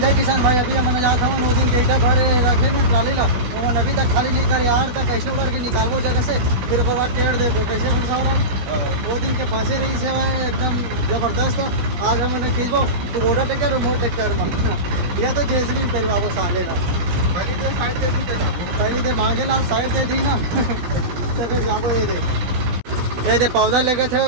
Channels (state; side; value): late; left; 16 ms